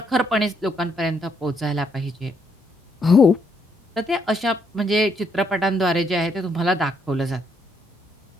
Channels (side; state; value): both; normal; correlation 0.73